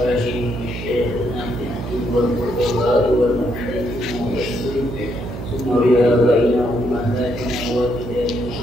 وشيخنا في الدين والفقهاء والمحدثين ثم رياضينا أمهاتنا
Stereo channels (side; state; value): right; noise; hum, 8 dB below the sound